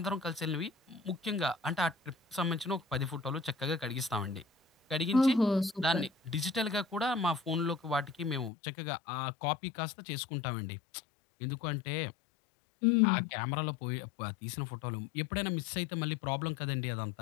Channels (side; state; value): right; drops out; at 8.5 s